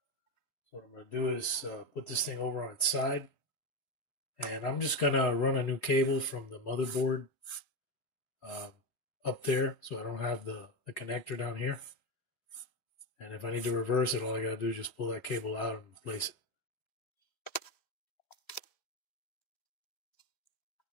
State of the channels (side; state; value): right; late; 3.6 ms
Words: So what I'm going to do is put this thing over on its side. And I'm just going to run a new cable from the motherboard up there, so I don't have the connector down here. And if I need to reverse it, all I got to do is just pull that cable out and replace it.